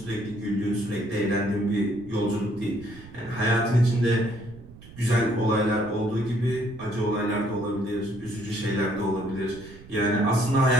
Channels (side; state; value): right; noise; rumble, 19 dB below the sound